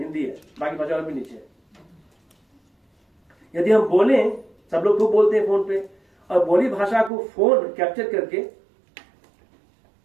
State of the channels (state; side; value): drops out; left; at 7.1 s